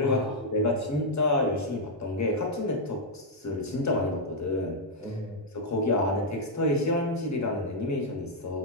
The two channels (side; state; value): both; normal; correlation -0.04